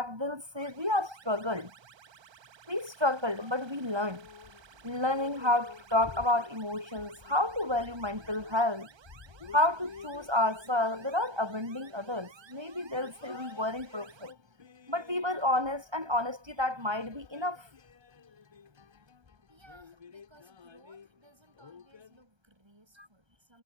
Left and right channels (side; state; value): left; late; 1.3 ms